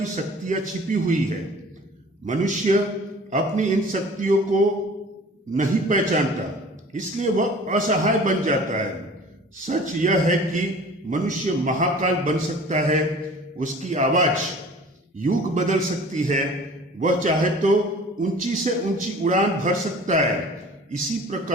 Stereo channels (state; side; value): normal; both; correlation 0.46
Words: शक्तियां छिपी हुई है। मनुष्य अपनी इन शक्तियों को नहीं पहचानता, इसलिए वह असहाय बन जाता है। सच यह है कि मनुष्य महाकाल बन सकता है। उसकी आवाज युग बदल सकती है। वह चाहे तो ऊंची से ऊंची उड़ान भर सकता है। इसी